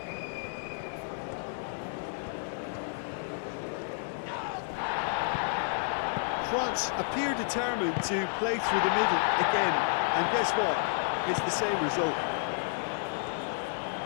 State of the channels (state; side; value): silent; right; digital silence